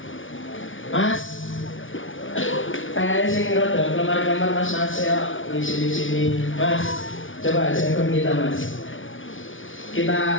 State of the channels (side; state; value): right; late; 0.57 ms